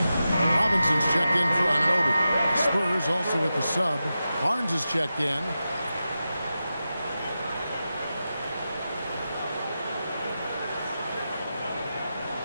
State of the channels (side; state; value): both; inverted; correlation -0.91